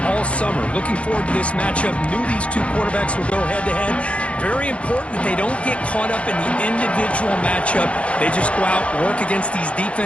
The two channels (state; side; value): late; right; 0.062 ms